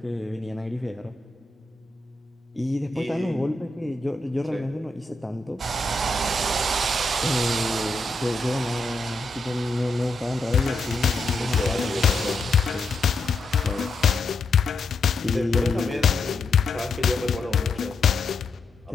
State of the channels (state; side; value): quieter; right; 3.1 dB